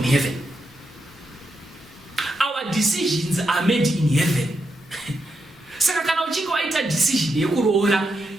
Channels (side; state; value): both; normal; correlation 0.83